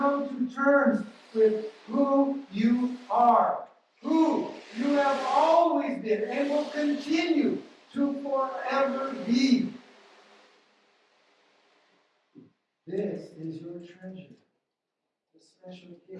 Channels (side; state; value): both; identical; correlation 1.00